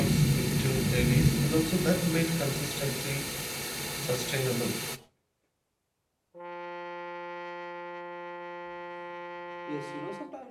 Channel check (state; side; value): identical; both; correlation 1.00